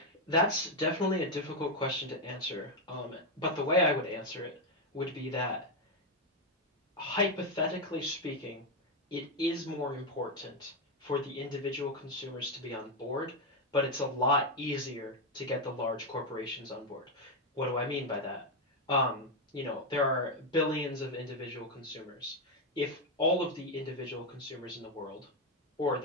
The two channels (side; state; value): both; normal; correlation 0.05